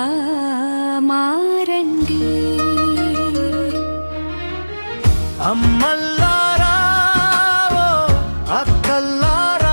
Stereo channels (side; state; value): both; inverted; correlation -1.00